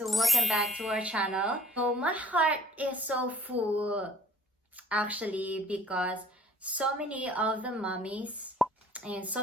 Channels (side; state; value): both; normal; correlation 0.55